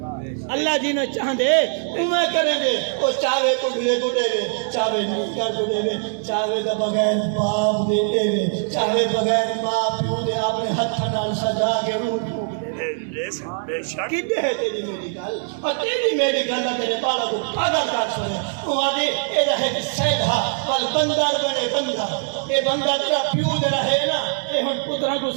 اللہ جنہیں چاندے ہوں میں کریں گے وہ چاہے تو گلے کو دے گے چاہے نکر کو دے گے چاہے دا بغیر باپ دے دے گے چاہے بغیر ماں پیو دے اپنے ہاتھ نال سجا کے روح بے شک کدے ہے تیری میری گل اور تیری میری گل تیرے بالا کو پاگل کر سنے وہ آدھے اے رہے کہ سیدھا پل بندر بنے بندر اے بندر تیرا پیو دے رہے نا اے ہن پترہ کو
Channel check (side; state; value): left; silent; 64 dB below the other